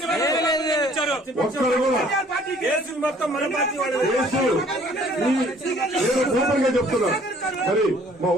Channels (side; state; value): both; normal; correlation 0.57